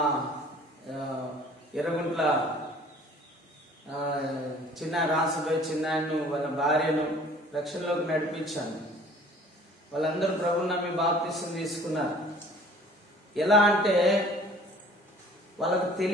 ఎర్రగుంట్ల చిన్న రాసుపై చిన్నాయన్ను, వాళ్ళ భార్యను రక్షణలోకి నడిపించాను. వాళ్ళందరూ ప్రభువుని నమ్మి బాప్తిసం తీసుకున్నారు. ఎలా అంటే వాళ్ళకు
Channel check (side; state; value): both; normal; correlation 0.52